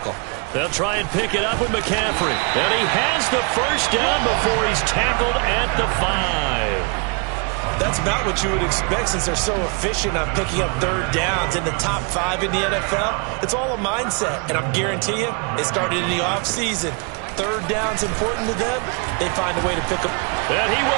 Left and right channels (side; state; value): left; quieter; 35.0 dB